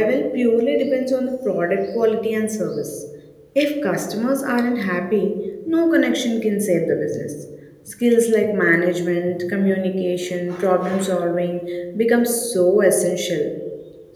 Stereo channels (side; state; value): both; identical; correlation 1.00